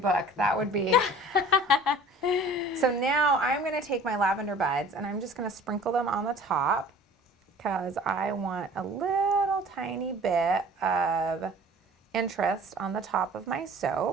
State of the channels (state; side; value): normal; both; correlation 0.47